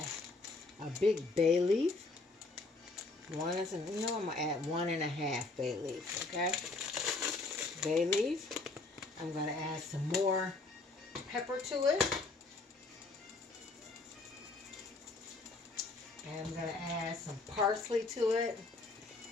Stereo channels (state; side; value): quieter; right; 3.5 dB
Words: a big bay leaf. I'm going to add 1.5 bay leaves, okay? Bay leaf. I'm going to add some more pepper to it. And I'm going to add some parsley to it.